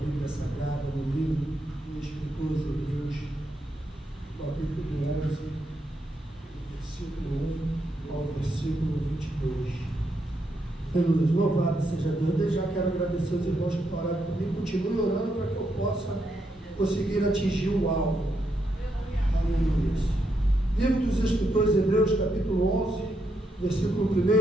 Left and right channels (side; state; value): both; normal; correlation 0.80